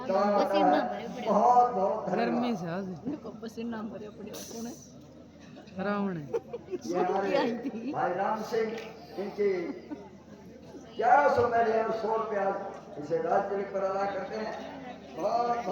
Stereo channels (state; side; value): identical; both; correlation 1.00